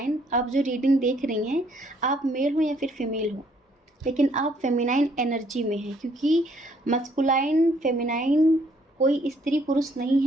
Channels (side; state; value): both; normal; correlation 0.66